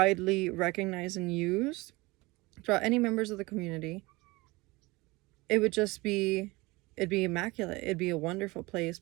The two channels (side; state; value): left; quieter; 22.9 dB